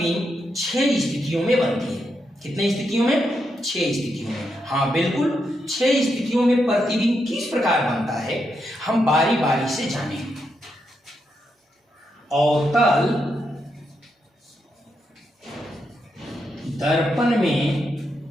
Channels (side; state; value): both; normal; correlation 0.83